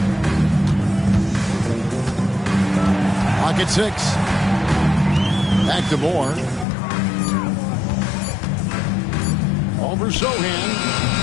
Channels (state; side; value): drops out; right; at 6.7 s